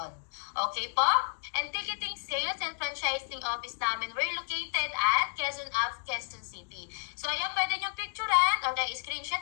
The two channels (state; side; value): silent; right; digital silence